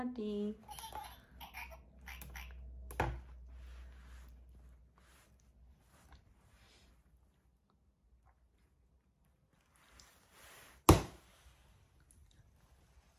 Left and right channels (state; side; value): identical; both; correlation 1.00